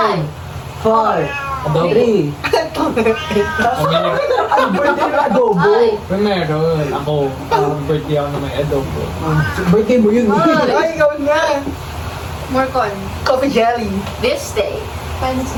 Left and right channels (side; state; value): both; identical; correlation 1.00